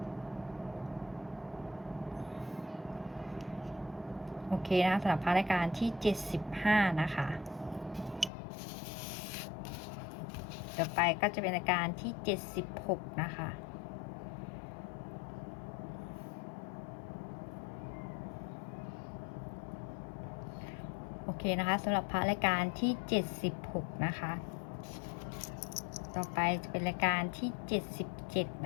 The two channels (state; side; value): drops out; right; at 8.3 s